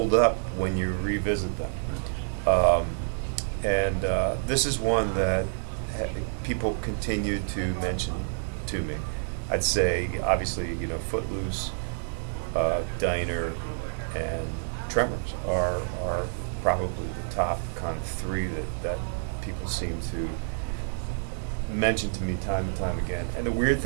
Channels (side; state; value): left; silent; digital silence